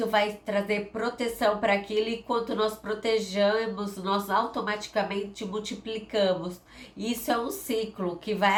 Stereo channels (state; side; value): identical; both; correlation 1.00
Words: vai trazer proteção para aquilo e quando nós protegemos, nós automaticamente multiplicamos. Isso é um ciclo que